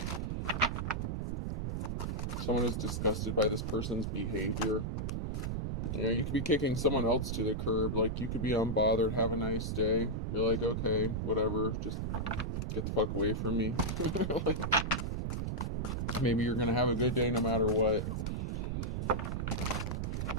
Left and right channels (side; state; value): right; noise; rumble, 1 dB below the sound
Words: Someone is disgusted by this person's behavior. You know, you could be kicking someone else to the curb. Like, you could be unbothered, have a nice day. You're like, okay, whatever, just get the fuck away from me. Like, maybe you're gonna have a good day no matter what.